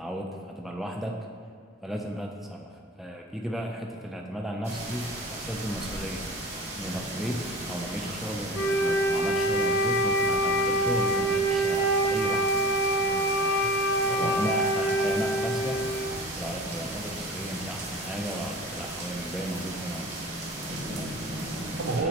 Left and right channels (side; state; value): both; normal; correlation 0.38